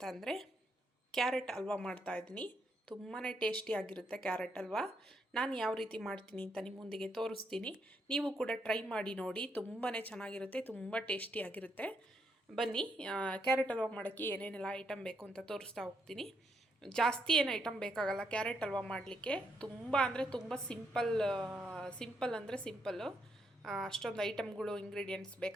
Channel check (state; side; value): normal; both; correlation 0.77